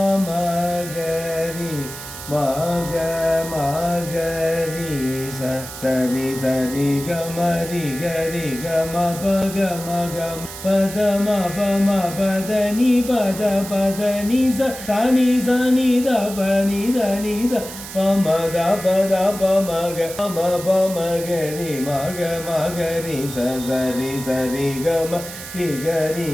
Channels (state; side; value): noise; right; hiss, 12 dB below the sound